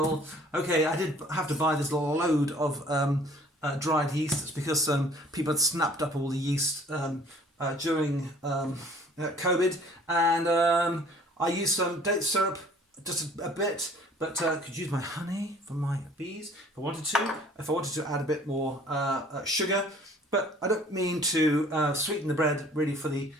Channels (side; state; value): both; normal; correlation 0.53